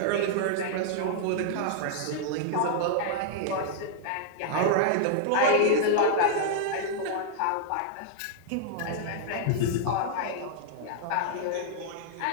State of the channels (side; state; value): both; different; correlation -0.01